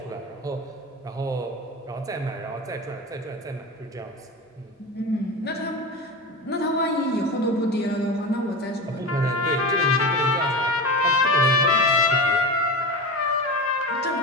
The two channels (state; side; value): normal; both; correlation 0.26